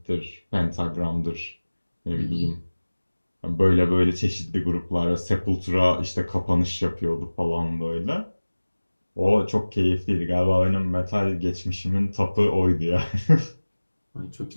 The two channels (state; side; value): inverted; both; correlation -1.00